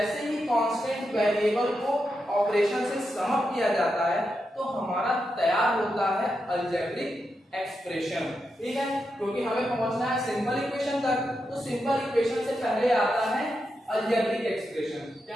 ही कांस्टेंट वेरिएबल को ऑपरेशन से समअप किया जाता है तो हमारा तैयार होता है अलजेब्रिक एक्सप्रेशन। ठीक है, क्योंकि हमें पहुंचना है सिंपल इक्वेशन तक, तो सिंपल इक्वेशन से पहले आता है अलजेब्रिक एक्सप्रेशन। क्या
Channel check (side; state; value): both; normal; correlation 0.86